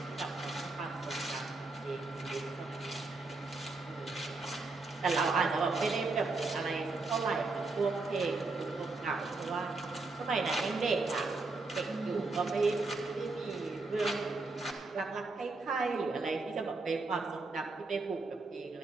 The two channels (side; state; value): left; quieter; 3.5 dB